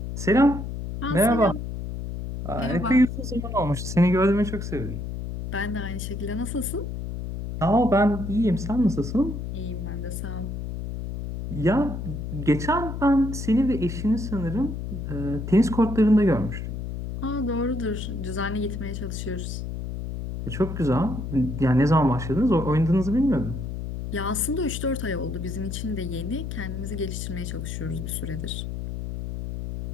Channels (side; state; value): left; noise; hum, 6 dB below the sound